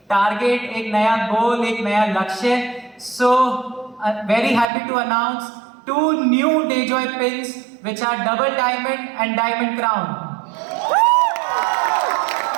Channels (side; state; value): left; drops out; at 4.7 s